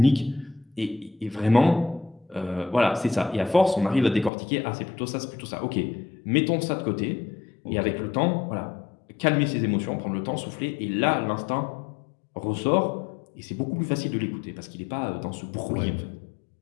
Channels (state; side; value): drops out; right; at 4.3 s